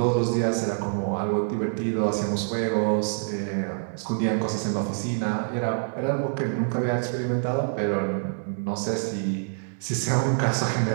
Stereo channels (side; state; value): left; silent; digital silence